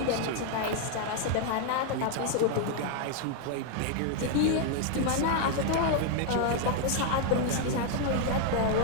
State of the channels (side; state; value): both; different; correlation 0.00